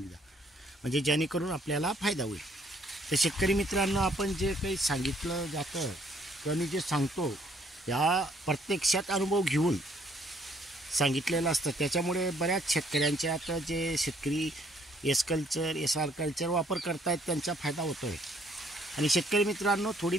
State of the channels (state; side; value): normal; both; correlation 0.65